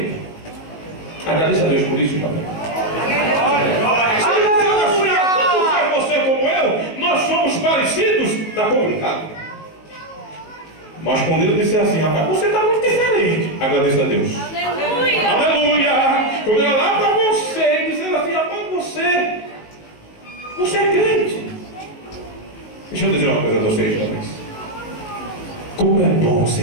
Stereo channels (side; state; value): right; late; 19 ms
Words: Agradeça a Deus por isso, irmão. Se você como eu, nós somos parecidos, está complicado. Mas quando ele disser assim: rapaz, você está muito diferente, agradeça a Deus. Aleluia! Aleluia! Quando eu olhar para você e dizer assim: rapaz, você é crente. Deixa eu dizer uma coisa a vocês, jovens. Como é bom